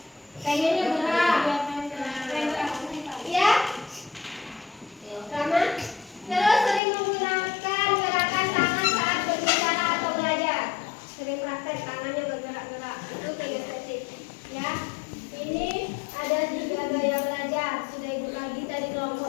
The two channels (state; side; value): drops out; right; at 6.8 s